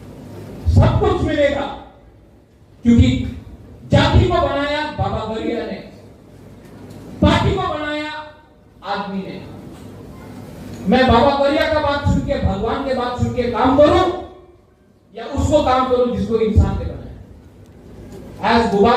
सब कुछ मिलेगा, क्योंकि जाति को बनाया बाबा गौरिया ने, पार्टी को बनाया आदमी ने। मैं बाबा गौरिया का बात सुन के, भगवान के बात सुन के काम करूं, या उसको काम करूं जिसको इंसान ने बनाया। एज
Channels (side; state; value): both; identical; correlation 1.00